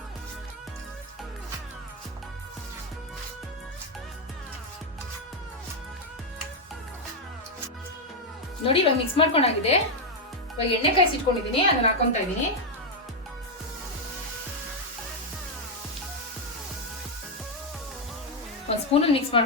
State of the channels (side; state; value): both; normal; correlation 0.01